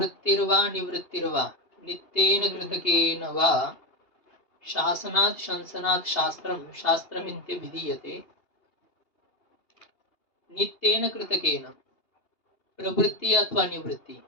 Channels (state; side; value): late; right; 2.8 ms